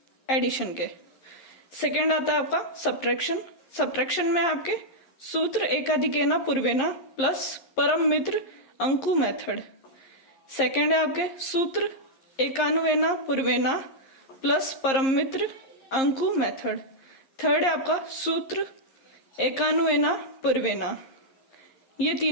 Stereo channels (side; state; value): right; late; 11 ms